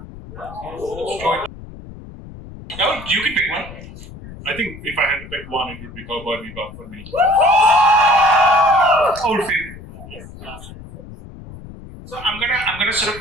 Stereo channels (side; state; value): left; noise; rumble, 15 dB below the sound